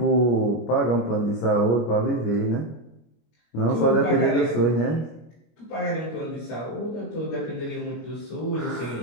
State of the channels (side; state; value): right; late; 25 ms